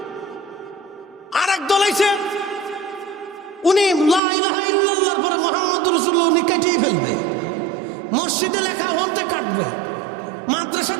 আর এক দল আইছে, উনি লা ইলাহা ইল্লাল্লাহর পরে মুহাম্মদুর রাসূলুল্লাহ উনি কাটিয়ে ফেলবে। মসজিদে লেখা ওখান থেকে কাটবে, মাদ্রাসার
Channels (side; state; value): left; drops out; at 4.2 s